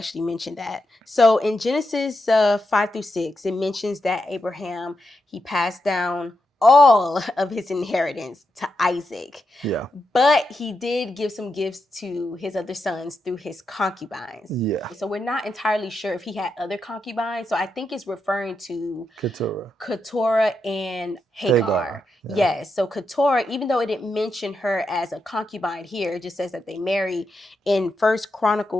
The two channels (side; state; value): both; normal; correlation 0.85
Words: mentioned that. So in Genesis 5-6, it mentions that Abraham, he passed down all of his inheritance to Isaac. Yeah. But he did give some gifts to his other sons through his concubines. Yeah. So we're not entirely sure if he had other concubines. So I think it's referring to Keturah and Hagar. Yeah. Yes. So Keturah, even though it didn't mention her as a concubine here, it just says that they married. In 1